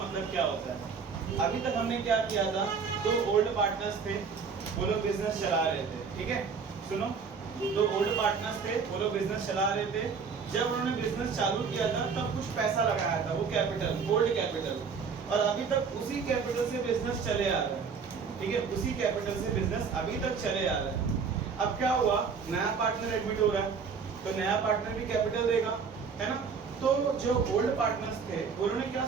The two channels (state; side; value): quieter; left; 5.7 dB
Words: क्या होता है। अभी तक हमने क्या किया था, दो ओल्ड पार्टनर्स थे, वो लोग बिजनेस चला रहे थे। ठीक है, सुनो, दो ओल्ड पार्टनर्स थे, वो लोग बिजनेस चला रहे थे। जब उन्होंने बिजनेस चालू किया था तब कुछ पैसा लगाया था, वो कैपिटल, ओल्ड कैपिटल, और अभी तक उसी कैपिटल से बिजनेस चले आ रहा है। ठीक है, उसी कैपिटल से बिजनेस अभी तक चले आ रहा है। अब क्या हुआ, नया पार्टनर एडमिट हो रहा है, तो नया पार्टनर भी कैपिटल देगा, है ना। तो जो ओल्ड पार्टनर्स थे उन्होंने क्या